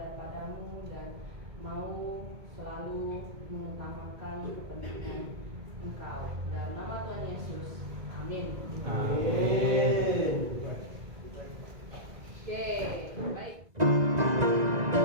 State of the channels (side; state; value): left; late; 2.0 ms